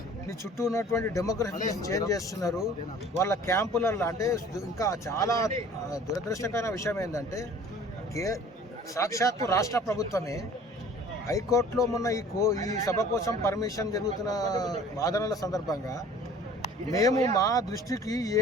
నీ చుట్టూ ఉన్నటువంటి డెమోగ్రఫీని చేంజ్ చేస్తున్నారు. వాళ్ళ క్యాంపులలో అంటే ఇంకా చాలా దురదృష్టకరమైన విషయం ఏంటంటే సాక్షాత్తు రాష్ట్ర ప్రభుత్వమే హైకోర్టులో మొన్న ఈ సభ కోసం పర్మిషన్ జరుగుతున్న వాదనల సందర్భంగా మేము మా దృష్టికి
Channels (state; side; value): normal; both; correlation 0.48